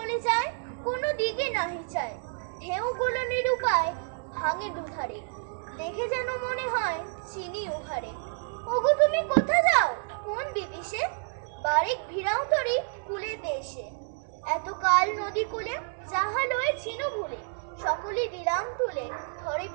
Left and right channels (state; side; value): silent; left; 58 dB below the other